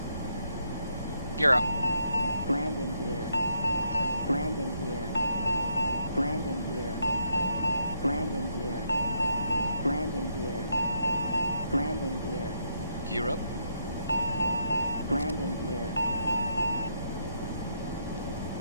Gear up. Landing gear. Landing gear. Landing gear. Landing gear. Landing gear. Landing gear. Gear up. Landing gear.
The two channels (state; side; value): inverted; both; correlation -0.77